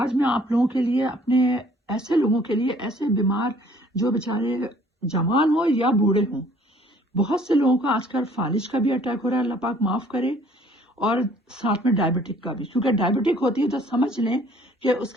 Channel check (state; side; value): normal; both; correlation 0.57